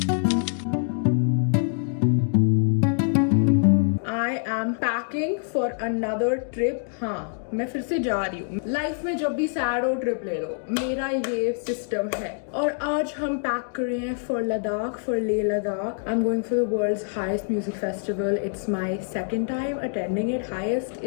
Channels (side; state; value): right; silent; digital silence